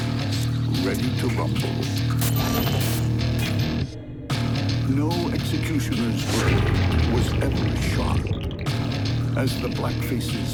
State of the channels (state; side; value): identical; both; correlation 1.00